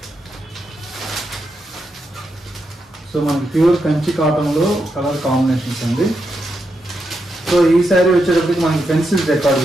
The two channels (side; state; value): both; normal; correlation 0.84